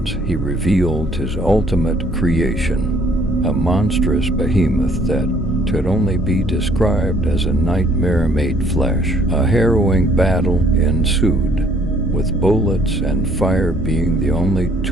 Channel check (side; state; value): both; normal; correlation 0.62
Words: he revealed his ultimate creation, a monstrous behemoth that could only be described as a nightmare made flesh. A harrowing battle ensued, with bullets and fire being the only